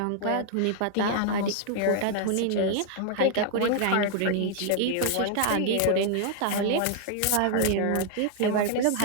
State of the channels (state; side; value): different; both; correlation 0.00